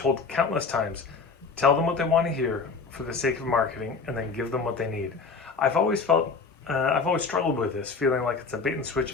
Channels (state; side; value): quieter; right; 4.8 dB